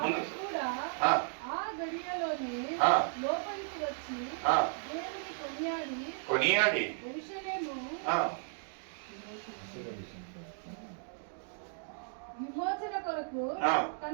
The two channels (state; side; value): silent; left; digital silence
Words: కూడా ఆ గడియలోనే లోపలికి వచ్చి దేవుని కొనియాడి యెరూషలేము విమోచన కొరకు